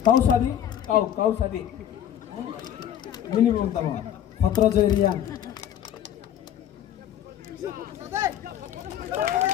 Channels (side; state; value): right; quieter; 10.5 dB